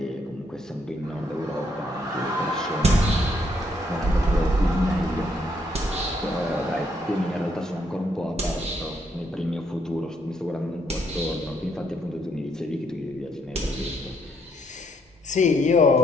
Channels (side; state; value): both; normal; correlation 0.72